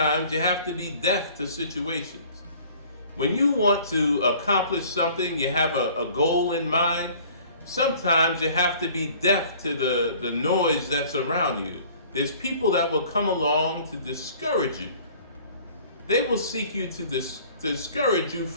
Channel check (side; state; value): both; inverted; correlation -0.51